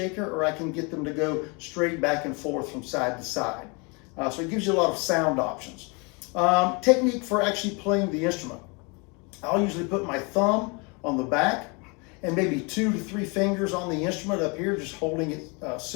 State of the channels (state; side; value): quieter; right; 30.8 dB